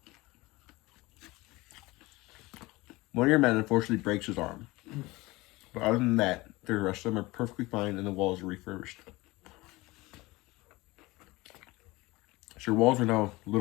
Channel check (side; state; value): right; quieter; 21.3 dB